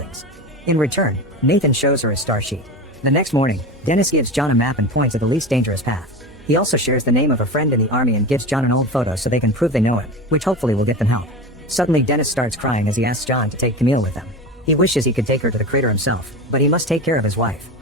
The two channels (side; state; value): both; normal; correlation 0.26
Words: In return, Nathan shows her his star sheet. The next morning, Dennis gives John a map and points at the least dangerous path. He also shares the name of a friend in the army and gives John an old photo so they can prove they know him, which hopefully will get them help. Suddenly Dennis starts crying as he asks John to take Camille with them. He wishes he could take her to the crater himself, but he must take care of his wife.